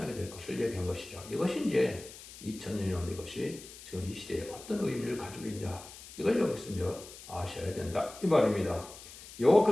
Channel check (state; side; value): noise; left; hiss, 16 dB below the sound